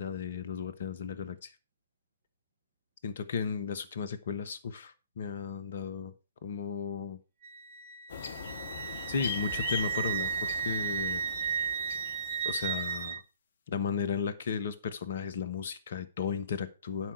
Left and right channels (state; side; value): inverted; both; correlation -0.53